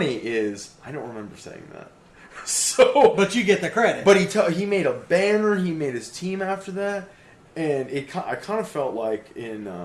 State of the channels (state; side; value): identical; both; correlation 1.00